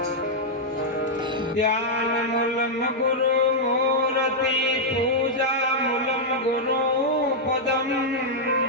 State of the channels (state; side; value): normal; both; correlation -0.05